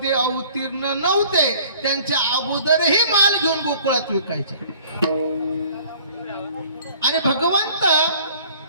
अवतीर्ण नव्हते त्यांच्या अगोदरही माल घेऊन गोकुळात विकायचे. आणि भगवंत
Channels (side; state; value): both; inverted; correlation -0.52